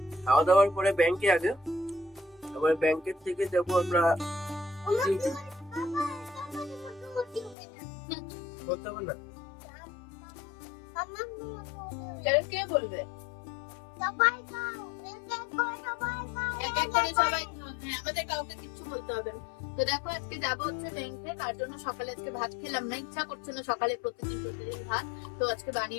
খাওয়া দাওয়ার পরে ব্যাংকে আগে, আবার ব্যাংকের থেকে যাব আমরা বলতে হবে না কে বলবে আমাদের কাউকে কিছু বলতে হবে না। তো দেখো আজকে যাবো হচ্ছে ব্যাংকে, তার জন্য সকালে আজকে ভাত খেলাম না, ইচ্ছা করছে না সকালে প্রতিদিন ভাত। তো আজকে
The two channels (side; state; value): right; drops out; at 7.6 s